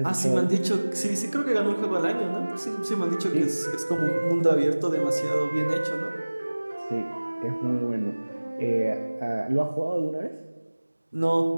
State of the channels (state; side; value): inverted; both; correlation -1.00